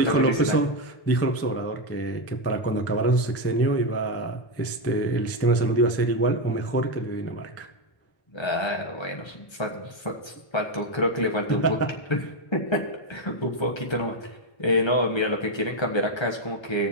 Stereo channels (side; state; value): right; late; 1.3 ms